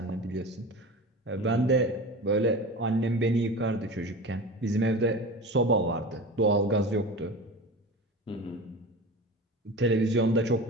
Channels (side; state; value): both; normal; correlation 0.32